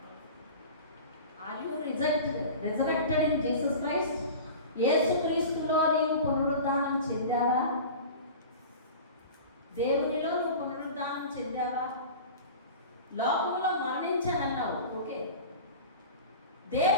Are you resurrected in Jesus Christ? యేసుక్రీస్తులో నీవు పునరుద్ధానం చెందావా? దేవునిలో నువ్వు పునరుద్ధానం చెందావా? లోకంలో మరణించానన్నావు, ఓకే.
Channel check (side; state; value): both; inverted; correlation -0.36